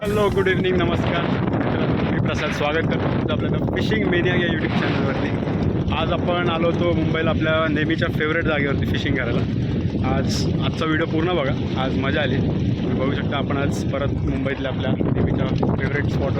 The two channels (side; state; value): both; identical; correlation 1.00